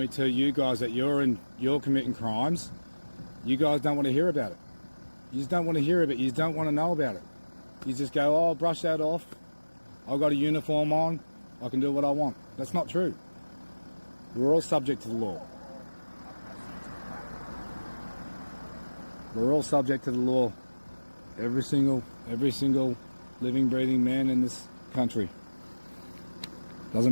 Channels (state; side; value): inverted; both; correlation -1.00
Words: tell you guys that you're committing crimes, you guys don't want to hear about it. You just don't want to hear of it. You just don't want to know about it. You just go, oh, brush that off. I've got a uniform on. I can do what I want. That's not true. We're all subject to the law. We're all subject to the law. Every single living, breathing man in this country. Doesn't